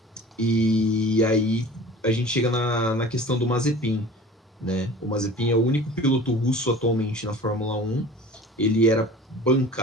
E aí a gente chega na questão do Mazepin, né? O Mazepin é o único piloto russo atualmente na Fórmula 1. Ele era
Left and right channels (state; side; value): normal; both; correlation 0.42